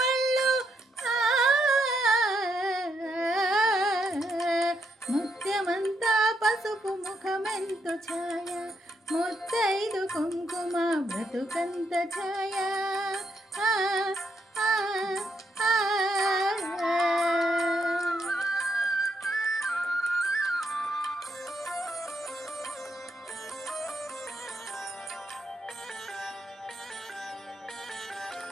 ముత్యమంతా పసుపు ముఖమెంతో ఛాయ ముత్తైదు కుంకుమ బ్రతుకంత ఛాయ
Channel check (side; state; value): both; normal; correlation 0.78